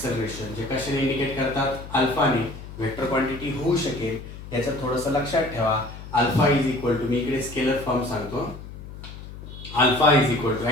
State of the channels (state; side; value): noise; left; hum, 13 dB below the sound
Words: जे कशाने इंडिकेट करतात अल्फाने. वेक्टर क्वांटिटी होऊ शकेल याचं थोडंसं लक्षात ठेवा. अल्फा इज इक्वल टू मी इकडे स्केलर फॉर्म सांगतो. Alpha is equal to